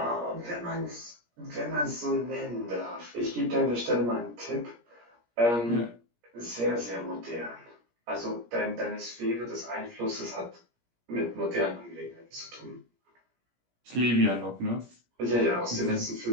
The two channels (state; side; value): late; left; 17 ms